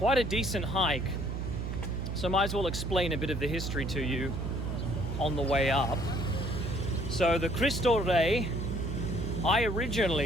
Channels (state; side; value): noise; right; hum, 3 dB below the sound